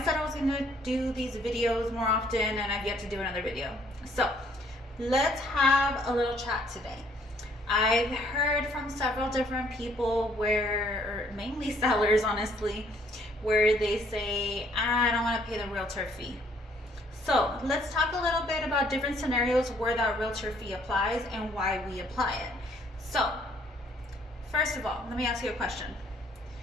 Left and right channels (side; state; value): both; normal; correlation 0.64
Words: said I was going to do these videos more often and I've yet to do another video. So let's have a little chat today. I've heard from several different people or mainly sellers honestly, where they say, I don't want to pay the realtor fee. So let's talk a little bit about different scenarios where that realtor fee applies and why we apply it. So, first of all, let me ask you a question.